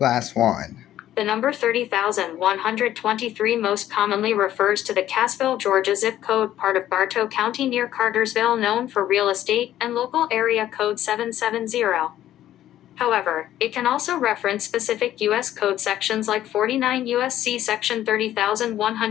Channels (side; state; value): right; quieter; 12.6 dB